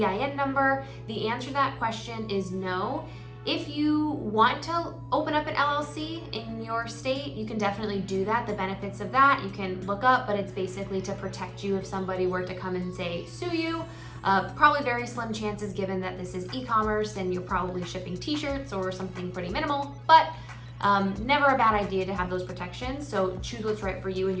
number? The answer to that question is no. If you want to open up an LLC in your state, you can definitely do that. The benefits of that you can look up, but it's basically to protect you if somebody were to come and say, sue you. Probably very slim chances given that this is e-commerce and you're probably shipping t-shirts or something pretty minimal, but never a bad idea to have those protections. So choose what's right for you and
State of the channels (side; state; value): both; identical; correlation 1.00